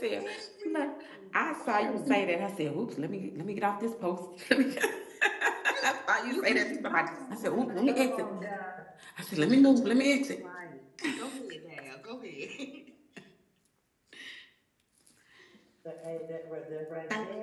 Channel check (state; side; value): identical; both; correlation 1.00